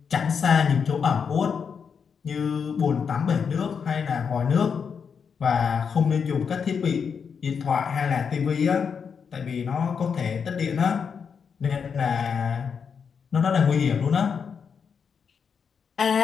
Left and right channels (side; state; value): right; quieter; 6.4 dB